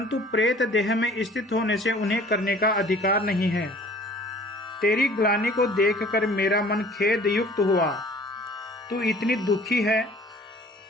प्रेत देह में स्थित होने से उन्हें करने का अधिकार नहीं है। तेरी ग्लानि को देखकर मेरा मन खेद युक्त हुआ। तू इतनी दुखी है,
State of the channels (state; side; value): normal; both; correlation 0.50